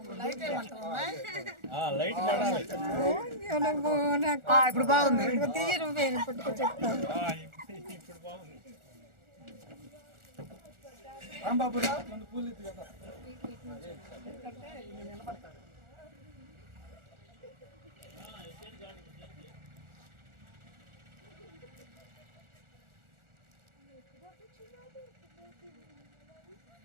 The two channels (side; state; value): left; late; 1.4 ms